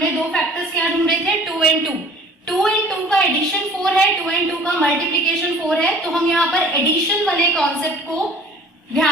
2 फैक्टर्स क्या ढूंढे थे, 2 and 2। 2 and 2 का एडिशन 4 है, 2 and 2 का मल्टीप्लीकेशन 4 है, तो हम यहाँ पर एडिशन वाले कॉन्सेप्ट को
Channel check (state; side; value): normal; both; correlation 0.48